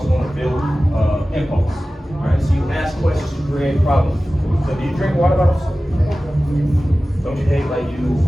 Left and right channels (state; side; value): normal; both; correlation 0.96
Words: going to build impulse. All right? So you ask questions to create problems. So do you drink water bottles? Don't you hate like you